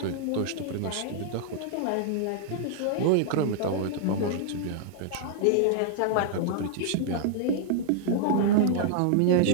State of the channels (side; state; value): both; different; correlation -0.01